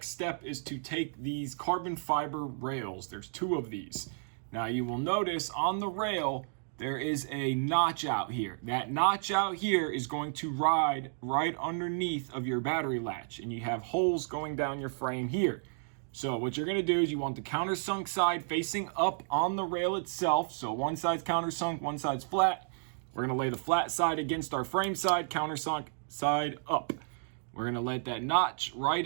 step is to take these carbon fiber rails. There's 2 of these. Now you will notice on the rail, there is a notch out here. That notch out here is going to ride right underneath of your battery latch, and you have holes going down your frame here. So what you're gonna do is you want the countersunk side facing up on the rail itself. So one side's countersunk, one side's flat. We're gonna lay the flat side against our frame side, countersunk side up. We're gonna let that notch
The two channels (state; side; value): silent; left; digital silence